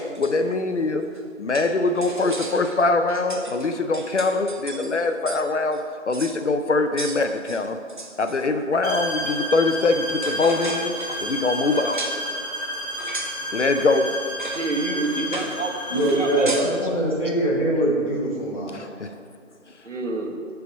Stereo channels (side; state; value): both; normal; correlation 0.40